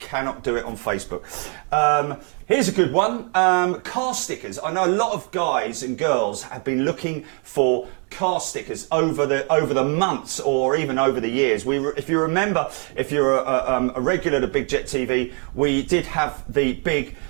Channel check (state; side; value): quieter; left; 39.7 dB